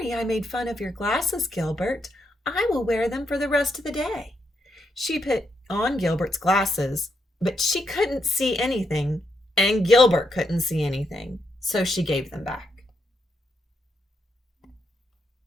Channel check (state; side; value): normal; both; correlation 0.80